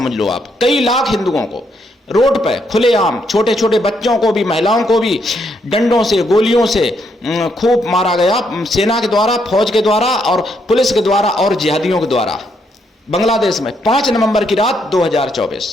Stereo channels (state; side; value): normal; both; correlation 0.75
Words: लो आप, कई लाख हिंदुओं को रोड पे खुलेआम, छोटे छोटे बच्चों को भी, महिलाओं को भी डंडों से, गोलियों से खूब मारा गया, सेना के द्वारा, फौज के द्वारा और पुलिस के द्वारा और जिहादियों के द्वारा। बांग्लादेश में 5 नवंबर की रात